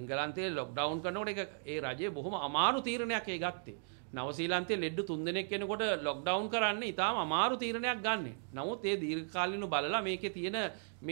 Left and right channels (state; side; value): silent; left; digital silence